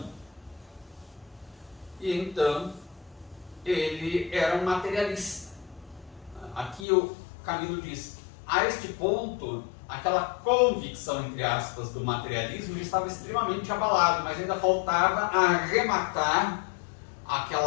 E então, ele era um materialista. Aqui o Camilo diz, a este ponto, aquela convicção, entre aspas, do materialismo estava extremamente abalado, mas ainda faltava arrematar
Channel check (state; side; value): drops out; right; at 6.9 s